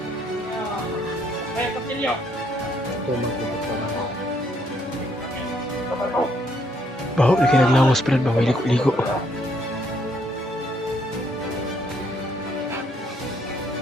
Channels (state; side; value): normal; both; correlation 0.70